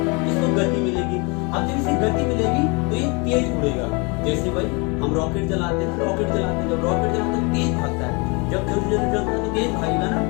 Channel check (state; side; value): quieter; right; 30.2 dB